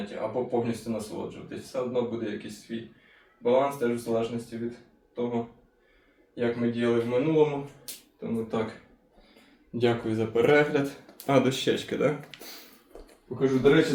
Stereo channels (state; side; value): identical; both; correlation 1.00